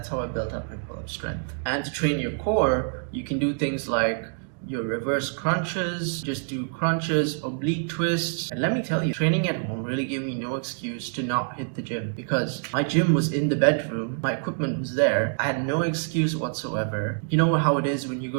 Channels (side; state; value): left; silent; digital silence